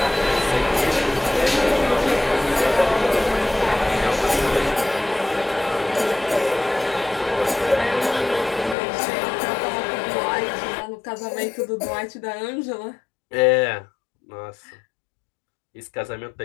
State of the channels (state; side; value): drops out; right; at 8.8 s